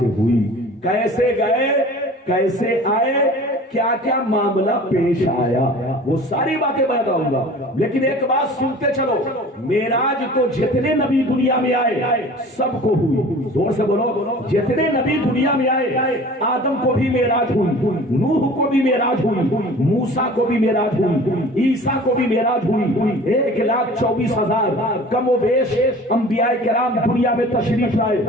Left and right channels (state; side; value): normal; both; correlation 0.43